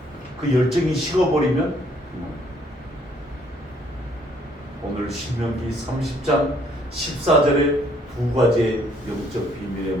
그 열정이 식어버리면 오늘 신명기 30장 14절에 두 가지의 영적 비밀의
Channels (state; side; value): normal; both; correlation 0.65